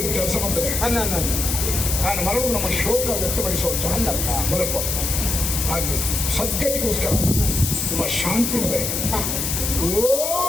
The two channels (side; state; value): left; noise; hiss, 1 dB below the sound